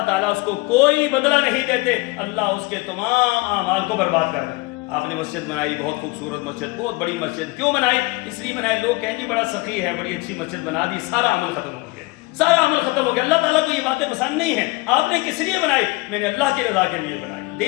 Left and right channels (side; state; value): right; quieter; 24.0 dB